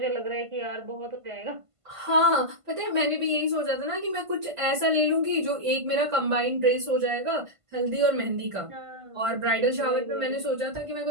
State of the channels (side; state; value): left; late; 1.5 ms